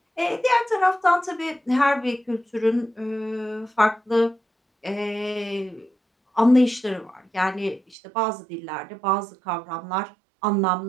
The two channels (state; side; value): drops out; left; at 8.0 s